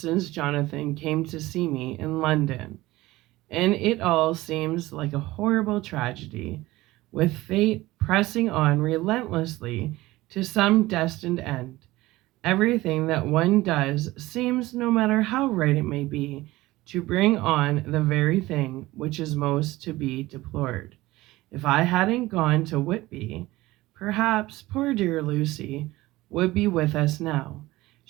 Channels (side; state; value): left; quieter; 18.5 dB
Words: Jonathan came to see me in London, and it all seems like a horrible tragedy, with fate pressing on relentlessly to some destined end. Everything that one does seems, no matter how right it may be, to bring on the very thing which is most to be deplored. If I hadn't gone to Whitby, perhaps poor dear Lucy would be with us now.